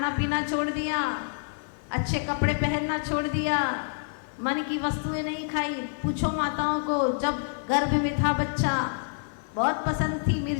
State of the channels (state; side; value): silent; right; 59 dB below the other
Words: पीना छोड़ दिया, अच्छे कपड़े पहनना छोड़ दिया, मन की वस्तुएं नहीं खाई। पूछो माताओं को, जब गर्भ में था बच्चा, बहुत पसंद थी